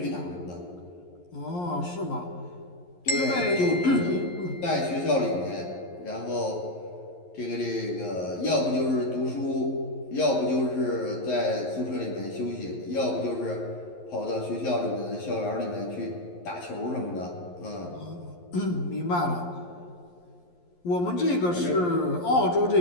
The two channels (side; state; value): right; late; 11 ms